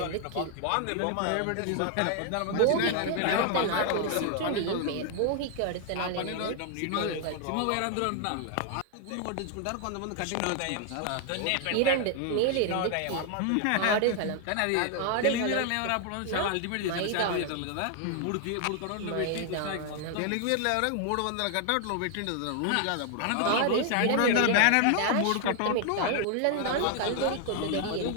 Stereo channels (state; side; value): different; both; correlation 0.00